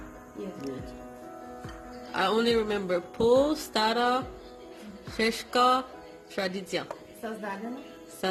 Good. I only remember po, stara, sheshka, tradicja. Създадена.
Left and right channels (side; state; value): both; identical; correlation 1.00